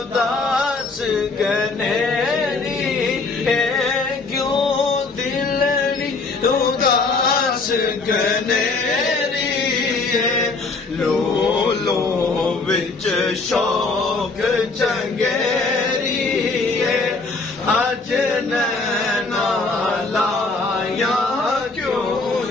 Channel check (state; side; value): quieter; right; 3.8 dB